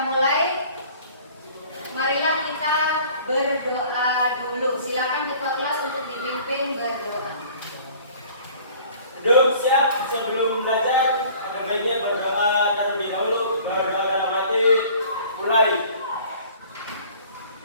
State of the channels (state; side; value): inverted; both; correlation -0.50